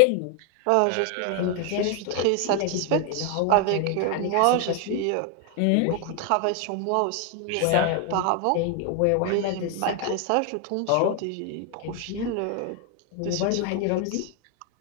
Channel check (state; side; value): different; both; correlation 0.00